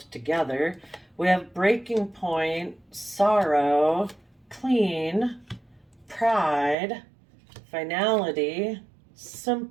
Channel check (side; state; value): left; drops out; at 6.8 s